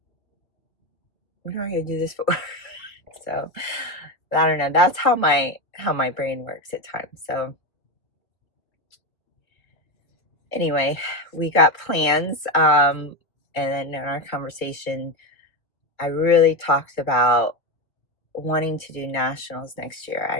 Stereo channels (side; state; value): right; late; 2.2 ms